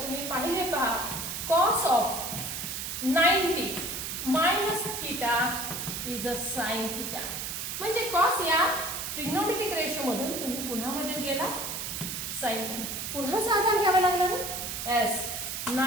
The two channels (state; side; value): noise; right; hiss, 5 dB below the sound